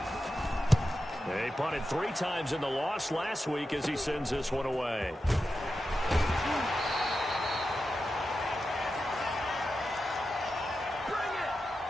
They punted 3 times in the loss last week as he sends this one away.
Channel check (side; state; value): both; normal; correlation 0.90